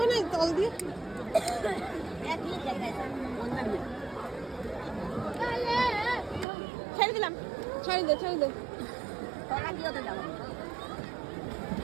না, তল দিয়ে ছেড়ে দিলাম। ছেড়ে দে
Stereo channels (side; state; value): left; drops out; at 6.5 s